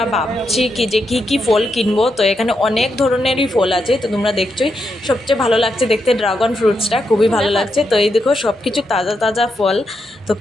ভাবছি যে কী ফল কিনবো। তো এখানে অনেক ধরনেরই ফল আছে, তো তোমরা দেখছোই। সবচেয়ে ভালো লাগছে দেখতে ড্রাগন ফ্রুটসটা, খুবই ভালো লাগছে। তো এই দেখো সব কিছু তাজা তাজা ফল, তো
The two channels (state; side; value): normal; both; correlation 0.83